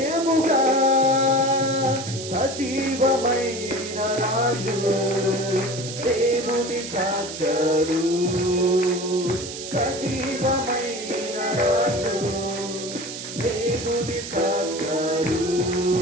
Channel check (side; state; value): right; noise; hiss, 9 dB below the sound